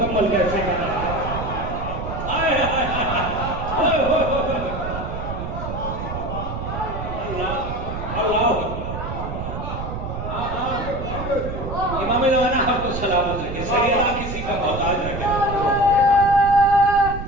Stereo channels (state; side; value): noise; right; rumble, 6 dB below the sound